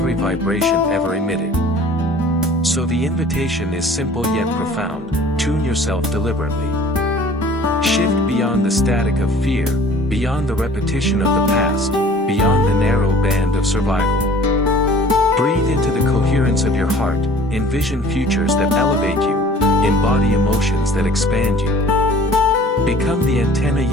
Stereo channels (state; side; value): normal; both; correlation 0.49